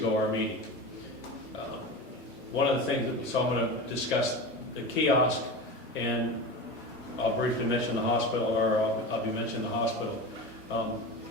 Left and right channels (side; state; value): both; normal; correlation 0.27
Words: our meeting. One of the things so I'm going to discuss the kiosk, and I'll briefly mention the hospital, or I'll be mentioning the hospital.